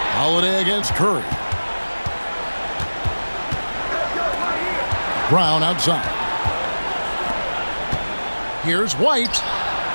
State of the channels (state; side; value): inverted; both; correlation -1.00